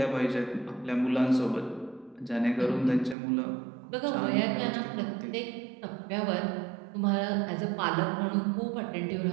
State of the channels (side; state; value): left; drops out; at 3.2 s